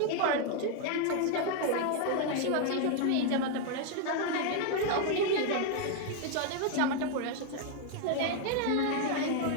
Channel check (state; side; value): different; both; correlation 0.00